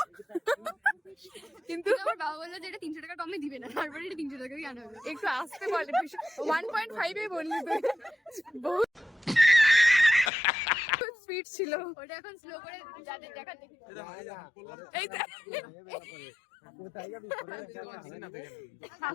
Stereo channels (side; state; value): right; drops out; at 10.3 s